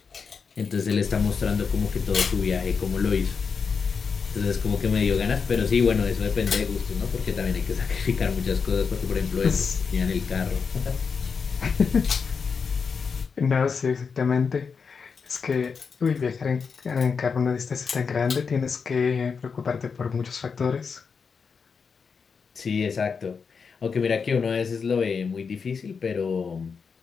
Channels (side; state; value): right; quieter; 5.6 dB